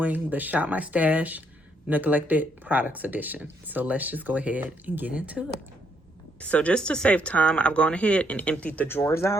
the Shop My Stash Neglected Products Edition. So let's just go ahead and get into it. So just to save time, I've gone ahead and emptied the drawers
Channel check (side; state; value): both; normal; correlation 0.72